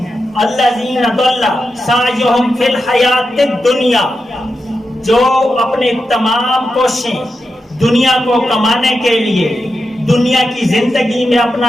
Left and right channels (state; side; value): normal; both; correlation 0.89